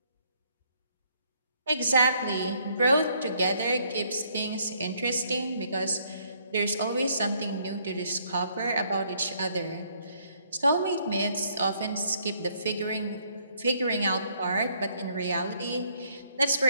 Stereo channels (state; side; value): inverted; both; correlation -0.68